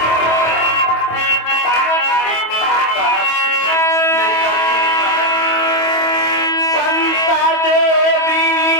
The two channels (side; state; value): right; late; 25 ms